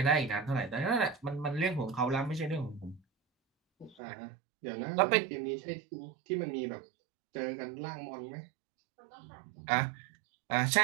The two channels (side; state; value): left; drops out; at 4.0 s